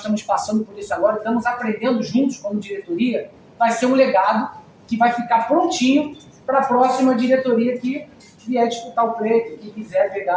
passando por isso agora, estamos aprendendo juntos como diretoria, vai ser um legado que vai ficar prontinho para a próxima diretoria que vier disputar o pleito, que quiser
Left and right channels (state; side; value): identical; both; correlation 1.00